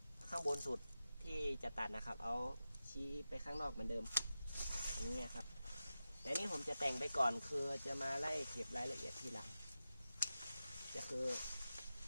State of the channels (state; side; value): inverted; both; correlation -0.93